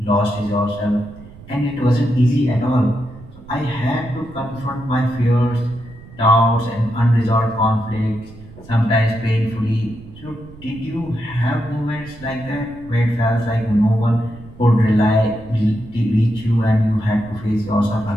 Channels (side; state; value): right; noise; rumble, 19 dB below the sound